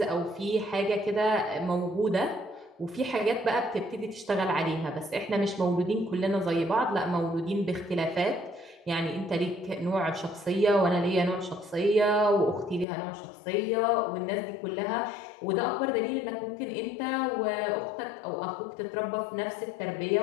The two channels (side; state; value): right; drops out; at 12.9 s